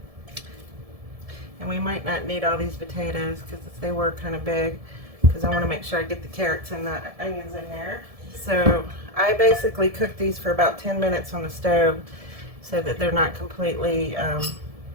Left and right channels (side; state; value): left; late; 1.7 ms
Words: And we might not need all these potatoes because they were kind of big, because I want to make sure I get the carrots and the onions in there. So I basically cook these for about 10 minutes on the stove so that they're not completely